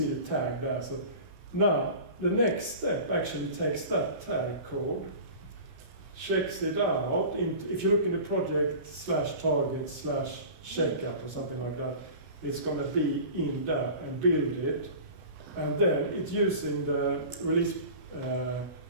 the tag there. So now, the next step actually takes that tag code, checks it out. If you look in the project /target/checkup or something like that, it's going to be in there and build it. And then it's using the release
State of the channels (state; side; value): late; left; 33 ms